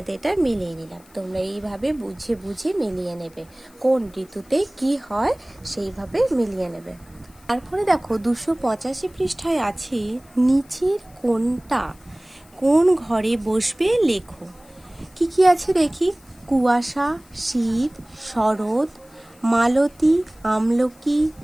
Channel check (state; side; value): noise; left; hiss, 28 dB below the sound